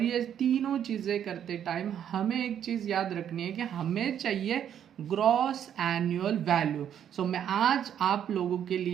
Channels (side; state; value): left; quieter; 9.5 dB